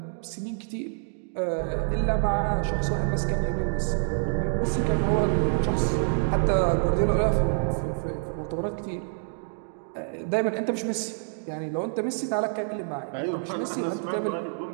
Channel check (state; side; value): silent; left; digital silence